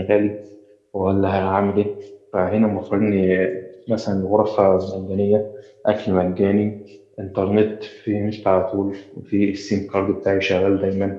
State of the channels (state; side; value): identical; both; correlation 1.00